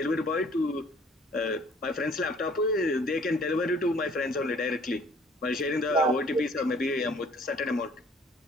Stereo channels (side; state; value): both; normal; correlation 0.56